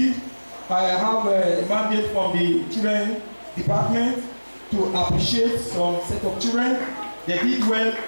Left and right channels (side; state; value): both; inverted; correlation -1.00